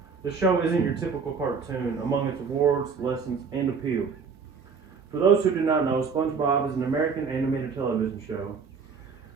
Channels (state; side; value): quieter; left; 5.6 dB